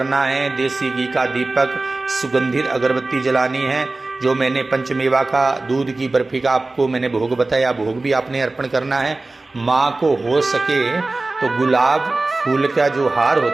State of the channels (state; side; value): quieter; left; 3.2 dB